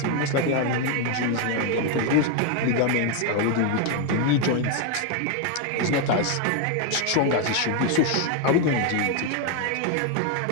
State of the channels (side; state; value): both; different; correlation 0.01